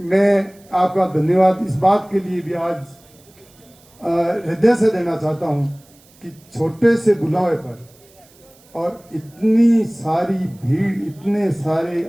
मैं आपका धन्यवाद इस बात के लिए भी आज हृदय से देना चाहता हूं कि छोटे से बुलावे पर और इतनी सारी भीड़, इतने सारे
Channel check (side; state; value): right; noise; hiss, 28 dB below the sound